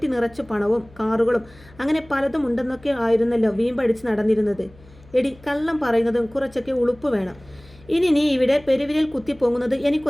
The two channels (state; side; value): noise; left; hum, 25 dB below the sound